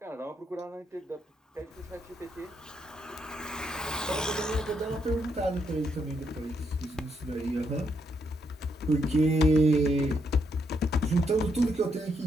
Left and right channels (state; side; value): normal; both; correlation 0.77